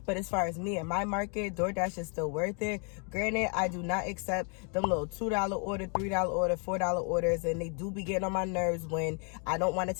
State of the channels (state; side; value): quieter; right; 38.5 dB